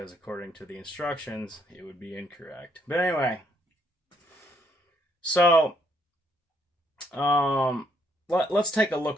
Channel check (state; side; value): normal; both; correlation 0.71